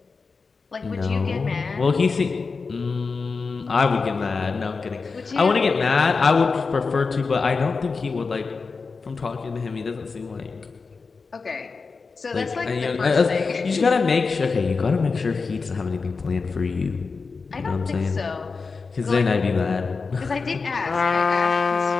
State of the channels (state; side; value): quieter; right; 4.6 dB